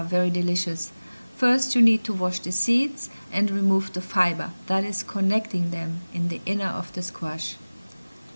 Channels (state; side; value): inverted; both; correlation -1.00